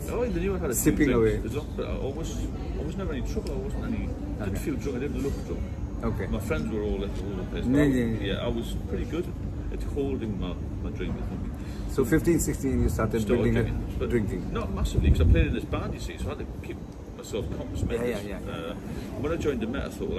oh, they knew I had a few Sipping drinks. away. There's not- but I was never any trouble. I wasn't any. Didn't feel drunk. I didn't look drunk. Okay. My friends were all over the place. Yeah, yeah. I was pretty good at holding my drink, I think. So 15, 16 you started building but drinking. Not massively, because I played in this band, you see, so I had to keep myself compass mentis. Yeah. When I joined the Met, I thought,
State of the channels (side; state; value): both; identical; correlation 1.00